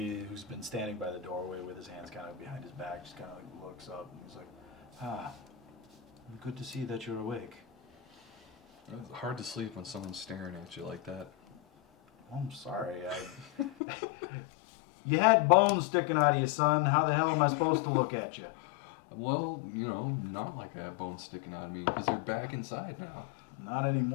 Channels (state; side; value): drops out; right; at 13.7 s